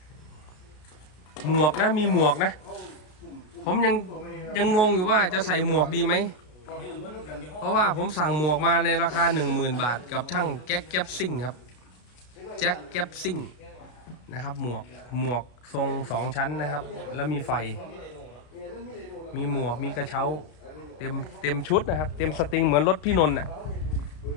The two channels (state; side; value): late; right; 33 ms